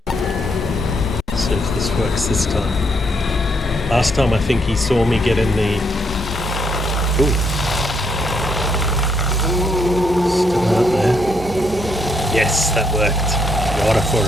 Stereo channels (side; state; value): both; normal; correlation 0.74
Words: Works this time. Last time I think he saw me get in the... Ooh. Still out there. Yes, that worked. Water for